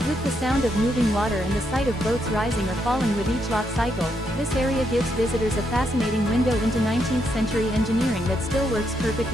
With the sound of moving water and the sight of boats rising or falling with each loch cycle, this area gives visitors a fascinating window into 19th century engineering that still works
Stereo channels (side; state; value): both; normal; correlation 0.78